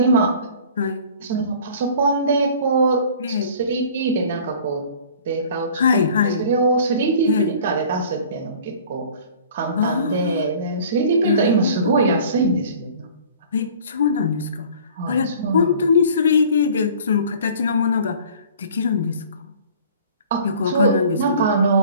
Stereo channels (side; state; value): both; inverted; correlation -0.48